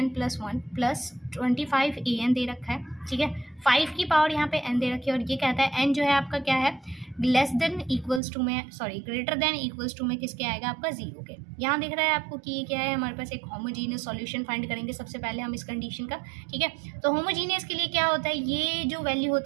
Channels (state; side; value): drops out; left; at 8.2 s